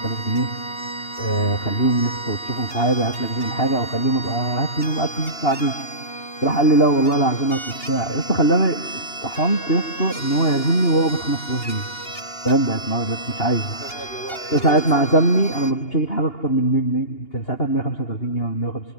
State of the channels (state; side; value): late; right; 2.8 ms